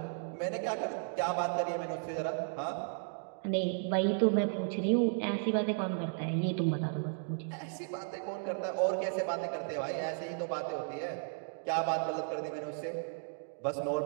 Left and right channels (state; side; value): silent; left; digital silence